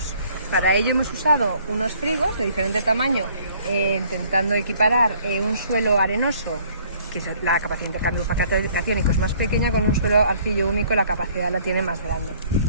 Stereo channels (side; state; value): both; inverted; correlation -0.58